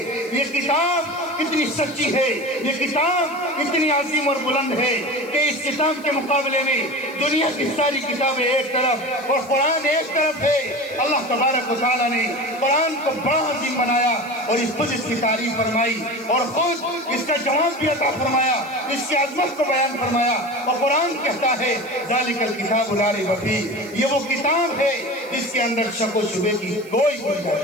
یہ کتاب کتنی سچی ہے، یہ کتاب اتنی عظیم اور بلند ہے کہ اس کتاب کے مقابلے میں دنیا کی ساری کتابیں ایک طرف اور قرآن ایک طرف ہے۔ اللہ تبارک و تعالیٰ نے قرآن کو بڑا عظیم بنایا اور خود اس کی تعریف فرمائی اور خود اس کا جواب بھی عطا فرمایا، اس کی عظمت کو بیان فرمایا، اور قرآن کہتا ہے ذالک الکتاب لا ریب فیہ، یہ وہ کتاب ہے جس کے اندر شک و شبے کی کوئی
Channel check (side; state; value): right; noise; hiss, 24 dB below the sound